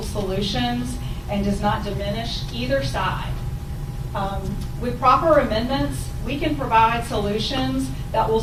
solutions and does not diminish either side. With proper amendments, we can provide solutions that will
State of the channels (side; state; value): both; identical; correlation 1.00